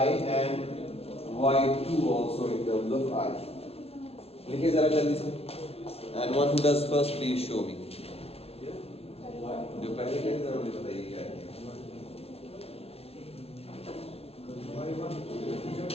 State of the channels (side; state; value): right; late; 0.29 ms